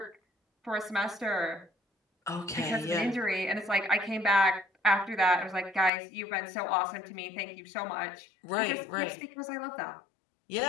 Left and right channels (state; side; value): drops out; right; at 5.9 s